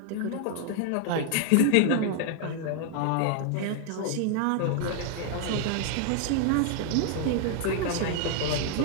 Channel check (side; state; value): both; different; correlation 0.00